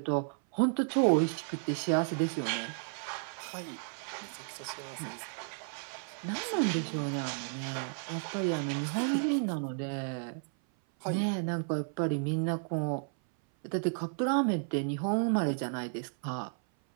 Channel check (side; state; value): left; silent; 56 dB below the other